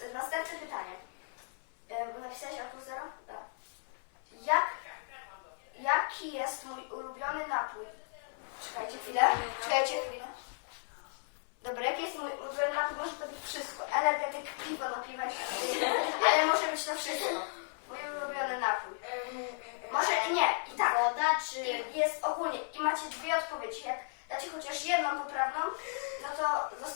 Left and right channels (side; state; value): right; silent; 55 dB below the other